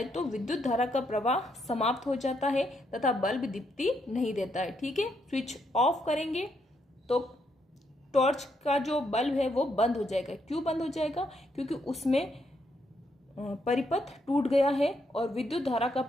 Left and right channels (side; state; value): both; normal; correlation 0.77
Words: तो विद्युत धारा का प्रवाह समाप्त हो जाता है तथा बल्ब दीप्ति नहीं देता है, ठीक है। स्विच ऑफ करेंगे तो टॉर्च का जो बल्ब है वो बंद हो जाएगा। क्यों बंद हो जाएगा, क्योंकि उसमें परिपथ टूट गया है और विद्युत धारा का